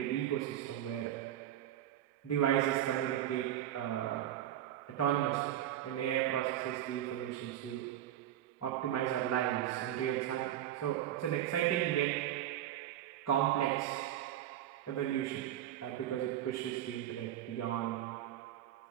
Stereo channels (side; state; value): left; quieter; 12.1 dB